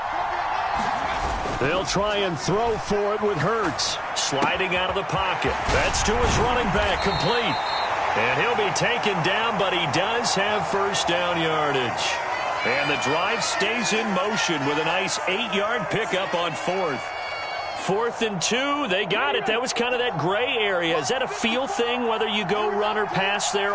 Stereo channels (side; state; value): both; identical; correlation 1.00